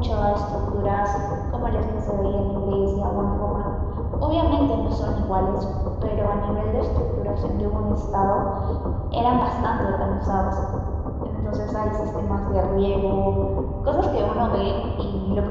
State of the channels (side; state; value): both; identical; correlation 1.00